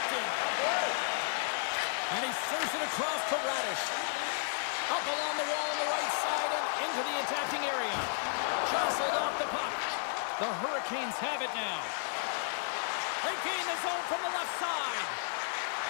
And he serves it across to Radish. Up along the wall on the right side and into the attacking area. Jostled off the puck. The Hurricanes have it now. They gain the zone from the left side.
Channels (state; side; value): silent; right; 56 dB below the other